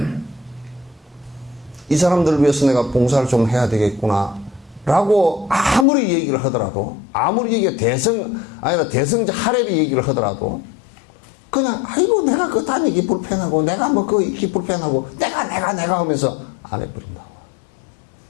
이 사람들을 위해서 내가 봉사를 좀 해야 되겠구나. 라고 아무리 얘기를 하더라도, 아무리 얘기가 대성자 하레비 얘기를 하더라도, 그냥, 아이고, 내가 그 다니기 불편하고, 내가 뭐 그 있기 불편하고, 내가 하면서 안 해버린다고.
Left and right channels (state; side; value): drops out; right; at 5.9 s